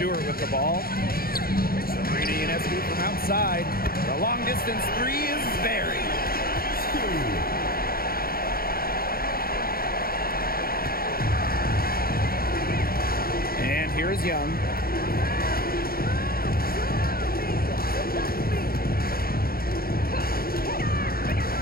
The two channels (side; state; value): right; late; 0.43 ms